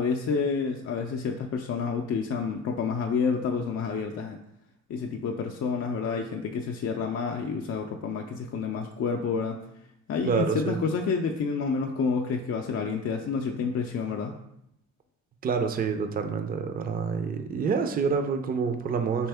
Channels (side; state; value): both; normal; correlation 0.33